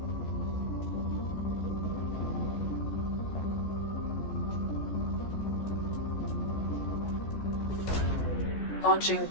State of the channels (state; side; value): late; right; 14 ms